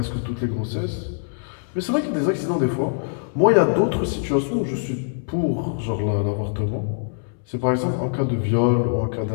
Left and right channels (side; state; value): right; silent; 62 dB below the other